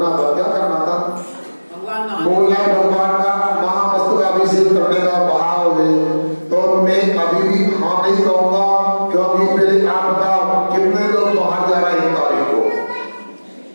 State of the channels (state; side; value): inverted; both; correlation -1.00